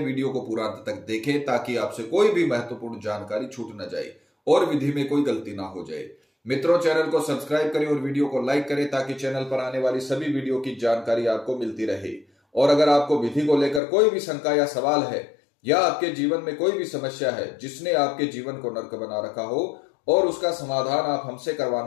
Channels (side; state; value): right; drops out; at 13.8 s